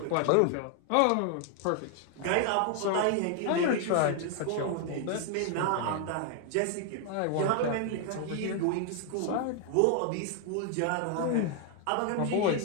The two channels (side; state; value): both; different; correlation 0.00